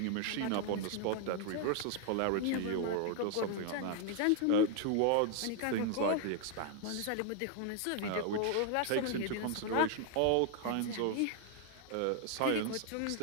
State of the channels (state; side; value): different; both; correlation 0.00